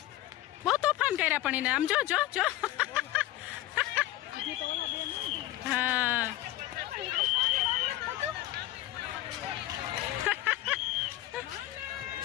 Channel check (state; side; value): quieter; right; 15.6 dB